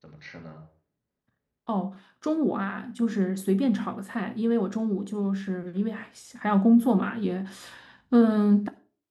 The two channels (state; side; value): identical; both; correlation 1.00